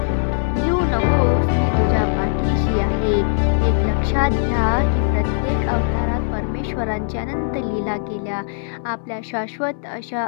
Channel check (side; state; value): right; silent; digital silence